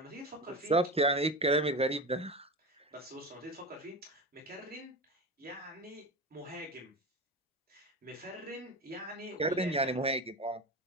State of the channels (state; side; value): normal; both; correlation 0.26